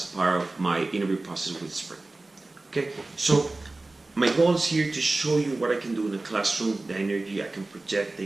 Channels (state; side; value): quieter; left; 3.1 dB